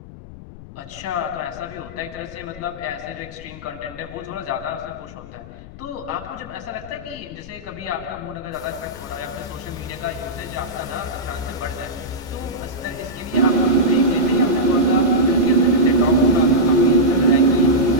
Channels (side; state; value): left; noise; rumble, 16 dB below the sound